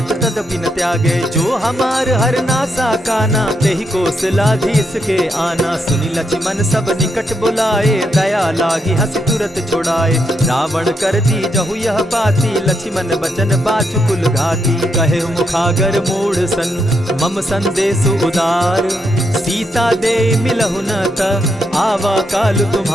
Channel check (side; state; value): both; normal; correlation 0.80